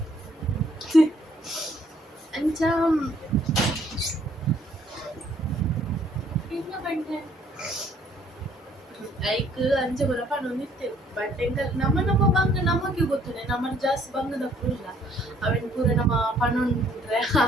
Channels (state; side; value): normal; both; correlation 0.63